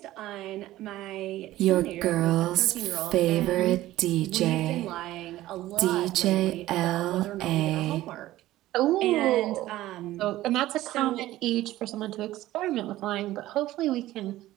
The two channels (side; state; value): left; quieter; 15.6 dB